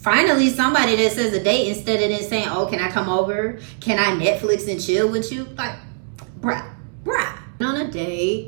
somebody that says a date instead of then saying, oh, can I come over? Can I Netflix and chill with you? Like, bruh. On a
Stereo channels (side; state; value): left; silent; digital silence